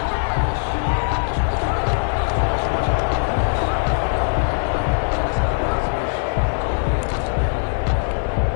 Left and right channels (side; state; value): right; silent; 65 dB below the other